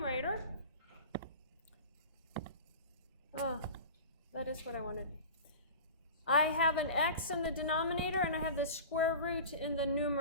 Oh, that is what I wanted. I have an x in the denominator and I have the square root in the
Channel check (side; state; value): both; inverted; correlation -0.35